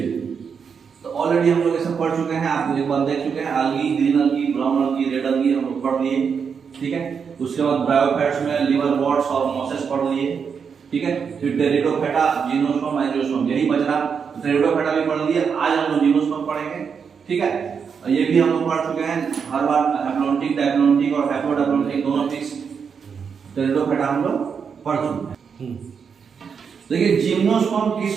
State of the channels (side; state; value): left; quieter; 6.4 dB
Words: तो ऑलरेडी हम लोग ये सब पढ़ चुके हैं, आप एक बार देख चुके हैं, अलगी, ग्रीन अलगी, ब्राउन अलगी, रेड अलगी हम लोग पढ़ लिए, ठीक है। उसके बाद ब्रायोफाइट्स में लिवर वॉट्स और मॉसेस पढ़ लिए, ठीक है। फिर टेरिडोफाइटा, जिम्नोस्पर्म, एंजियोस्पर्म, यही बच रहा। टेरिडोफाइटा भी पढ़ लिए, आज हम लोग जिम्नोस्पर्म पढ़ेंगे, ठीक है। ये भी हम लोग पढ़ चुके हैं हर बार, हैप्लॉन्टिक, डायप्लॉन्टिक और हैप्लोडायप्लॉन्टिक दोनों फिक्स। टेरिडोफाइटा हम लोग पढ़ चुके हैं। देखिए जिम्नोस्पर्म